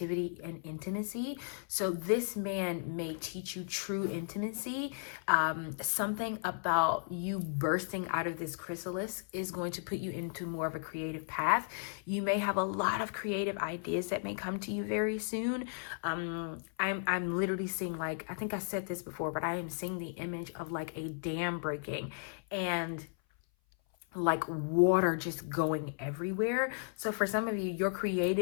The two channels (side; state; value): right; silent; 54 dB below the other